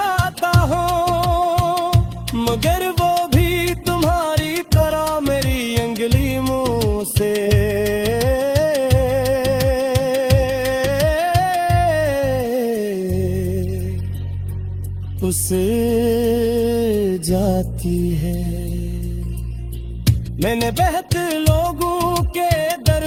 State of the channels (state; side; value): identical; both; correlation 1.00